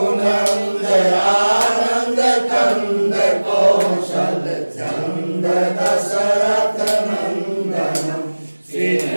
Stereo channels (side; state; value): both; inverted; correlation -1.00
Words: रघुनंदयानंद कंद कौशल चंद दशरथ नंदनम